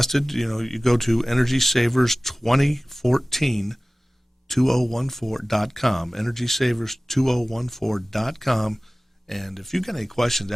you go to EnergySavers2014.com, EnergySavers2014.com. And if you've got any questions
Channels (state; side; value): normal; both; correlation 0.98